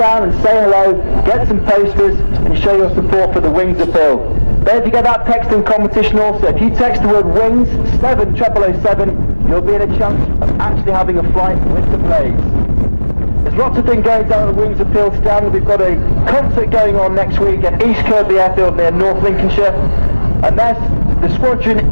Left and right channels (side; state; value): both; inverted; correlation -1.00